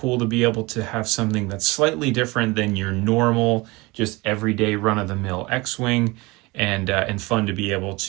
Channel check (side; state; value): left; quieter; 23.6 dB